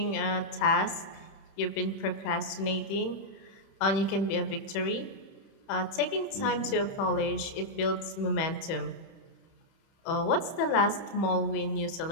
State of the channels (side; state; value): right; late; 30 ms